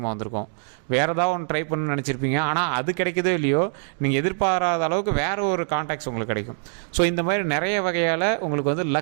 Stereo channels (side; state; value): left; silent; 63 dB below the other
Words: வந்திருக்கும். வேறு ஏதாவது ஒன்று ட்ரை பண்ணணும்னு நினச்சிருப்பீங்க, ஆனால் அது கிடைக்கதோ இல்லையோ, நீங்கள் எதிர்பாராத அளவுக்கு வேறு ஒரு கான்டாக்ட்ஸ் உங்களுக்கு கிடைக்கும். ஸோ இந்த மாதிரி நிறைய வகையால் உங்களுக்கு வந்து